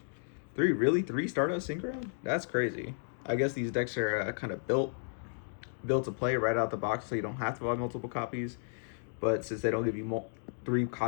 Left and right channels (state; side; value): silent; right; digital silence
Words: 3. Really, 3 Stardust Synchron? That's crazy. I guess these decks are kind of built to play right out the box, so you don't have to buy multiple copies. But since they don't give you 3